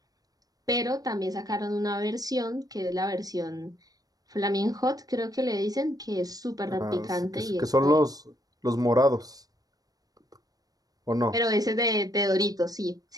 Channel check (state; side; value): late; left; 0.18 ms